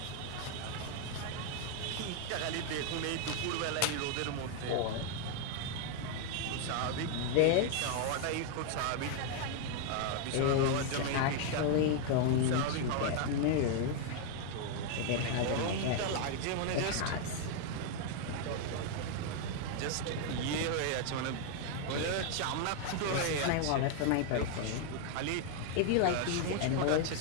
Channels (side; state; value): both; different; correlation 0.00